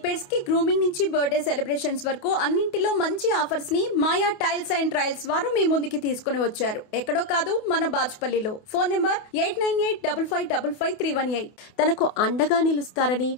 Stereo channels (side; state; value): right; late; 28 ms